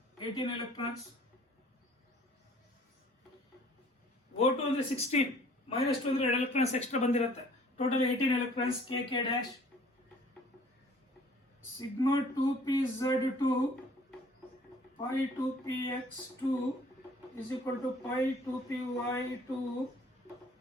18 electrons. O2 ಅಂದ್ರೆ 16 minus 2 ಅಂದ್ರೆ 2 electrons extra ಬಂದಿರುತ್ತೆ, total 18 electrons. K dash sigma 2pz2 pi 2px2 is equal to pi 2py2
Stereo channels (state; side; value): normal; both; correlation 0.54